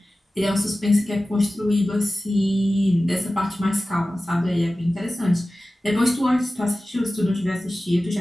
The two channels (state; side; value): normal; both; correlation 0.96